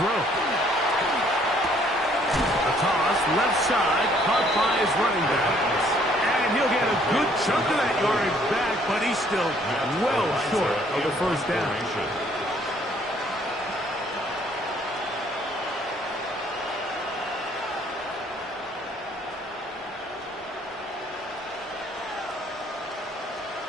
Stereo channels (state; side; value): normal; both; correlation 0.63